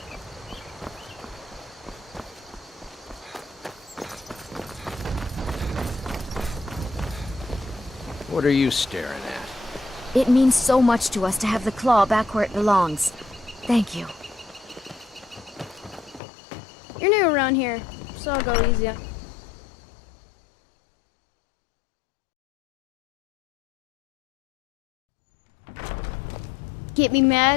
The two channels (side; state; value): right; drops out; at 16.2 s